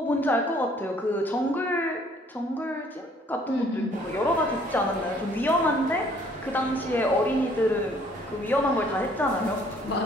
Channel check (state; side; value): normal; both; correlation 0.60